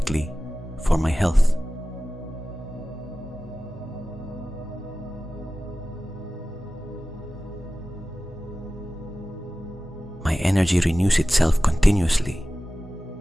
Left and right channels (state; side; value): normal; both; correlation 0.96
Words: for my health. My energy renews itself continuously.